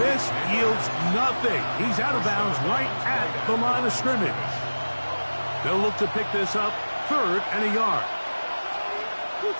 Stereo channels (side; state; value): both; inverted; correlation -1.00